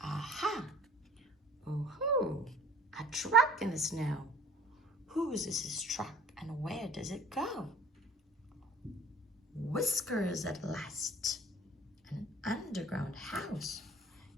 Oh ho! A truck in the snow. Whose is this truck, and where does it go? Whiskers at last. An underground house.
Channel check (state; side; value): normal; both; correlation 0.48